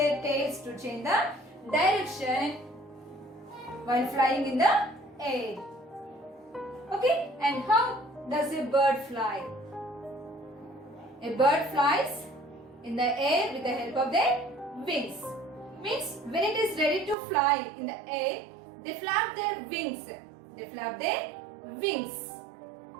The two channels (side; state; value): left; drops out; at 17.2 s